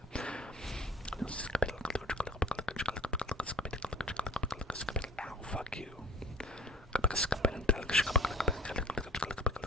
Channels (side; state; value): both; normal; correlation 0.46